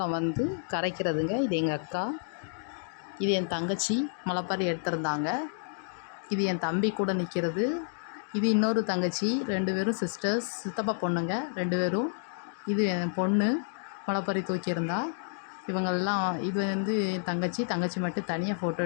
வந்து கரைக்கிறதுங்க. இது எங்கள் அக்கா, இது என் தங்கச்சி முளைப்பாரி எடுத்திருந்தாங்க. இது என் தம்பி கூட நிற்கிறது. இது இன்னொரு தங்கச்சி, 2 பேரும் சிஸ்டர்ஸ், சித்தப்பா பொண்ணுங்க 2 பேரும். இது என் பொண்ணு முளைப்பாரி தூக்கியிருந்தா. இவங்கெல்லாம் இது வந்து என் தங்கச்சி மட்டும் தனியாக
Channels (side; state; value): right; silent; digital silence